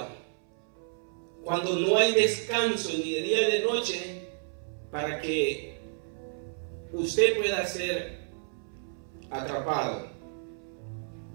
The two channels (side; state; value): left; silent; 57 dB below the other